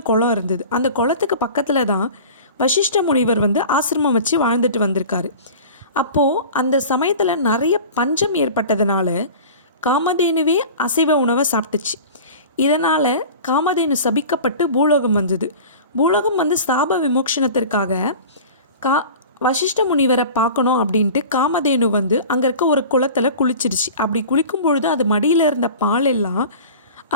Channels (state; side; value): inverted; both; correlation -0.38